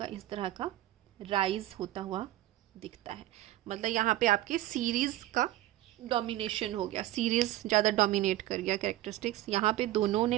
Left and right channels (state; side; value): quieter; left; 15.4 dB